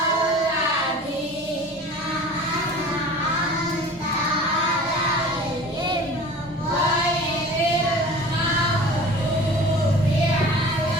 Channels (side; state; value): both; normal; correlation 0.41